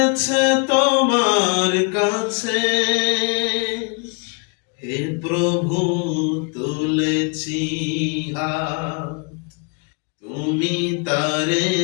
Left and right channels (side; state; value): right; quieter; 34.7 dB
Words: তোমার কাছে। হে প্রভু তুলেছি হাত, তুমি তারে